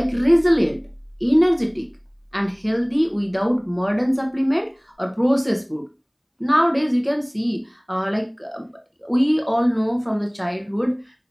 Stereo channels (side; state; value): both; identical; correlation 1.00